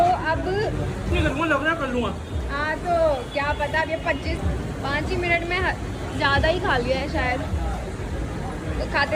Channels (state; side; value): identical; both; correlation 1.00